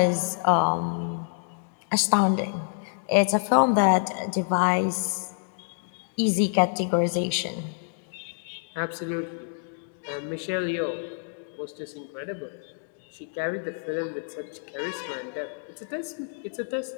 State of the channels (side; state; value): right; silent; digital silence